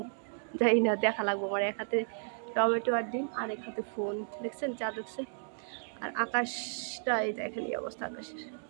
জানি না, দেখা লাগবো। আমার এক হাতে টমেটো আর ডিম আর এক হাতে ফোন, দেখছেন চাঁদ উঠছে। আর আকাশটা এই দেখেন এই অবস্থা আকাশের।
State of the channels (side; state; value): left; silent; digital silence